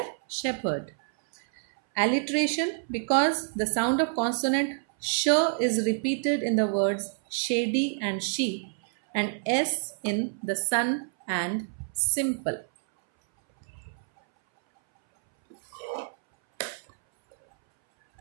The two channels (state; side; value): silent; left; 59 dB below the other